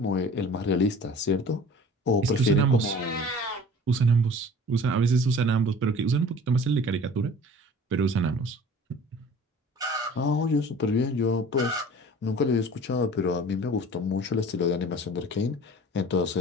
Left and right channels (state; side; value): normal; both; correlation 0.44